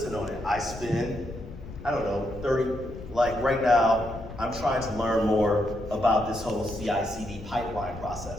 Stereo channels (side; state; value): left; noise; rumble, 13 dB below the sound